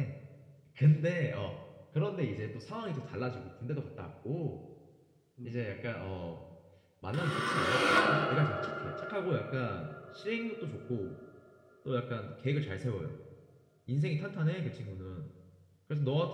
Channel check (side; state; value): both; identical; correlation 1.00